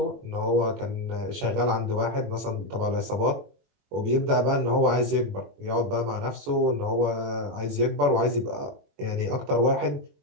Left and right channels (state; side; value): late; left; 21 ms